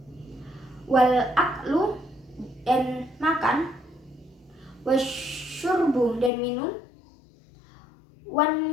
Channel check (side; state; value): right; drops out; at 6.3 s